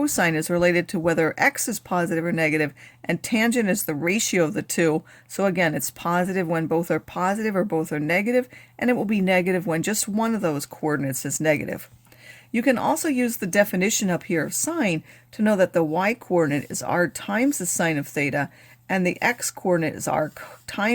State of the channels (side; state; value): both; identical; correlation 1.00